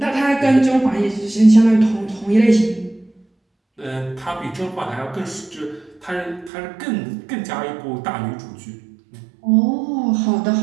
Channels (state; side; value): drops out; left; at 6.5 s